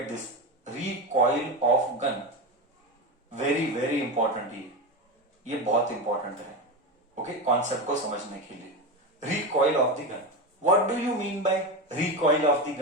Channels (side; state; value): both; normal; correlation 0.18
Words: this, recoil of gun, very very important, ये बहुत इंपॉर्टेंट है। ओके, कॉन्सेप्ट को समझने के लिए। Recoil of the gun, what do you mean by recoil of the